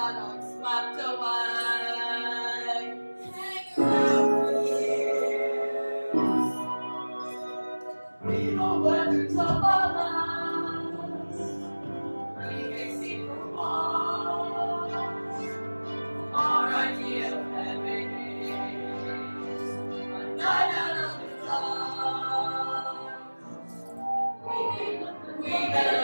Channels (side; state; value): both; inverted; correlation -1.00